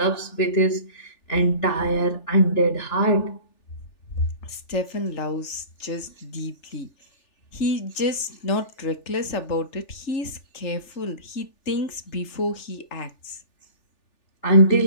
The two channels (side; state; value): right; late; 3.4 ms